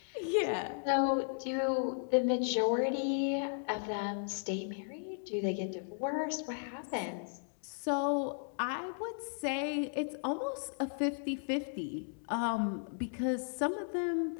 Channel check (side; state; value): right; silent; digital silence